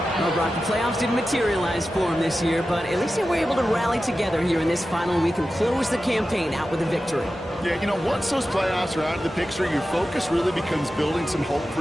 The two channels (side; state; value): both; normal; correlation 0.93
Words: Well, Brock, the playoffs didn't materialize for him this year, but at least they were able to rally together here in this final week and close the campaign out with a victory. Yeah, you know, once those playoffs are out of the picture, your focus really becomes building some hope